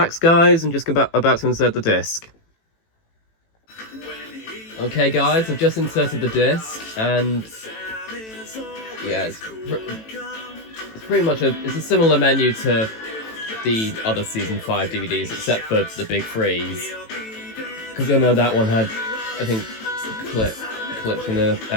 guys, and just about to insert the disc. Okay, guys, I've just inserted the disc, and yeah, it's pretty much it's a similar menu to the other season 5 DVDs, except for the big freeze. Because I know that one had, I think, clips from the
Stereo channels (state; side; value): late; right; 18 ms